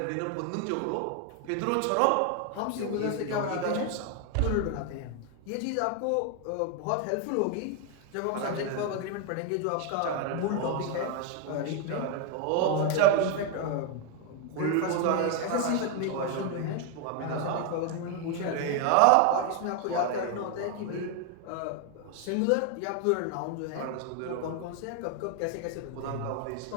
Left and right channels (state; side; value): different; both; correlation 0.01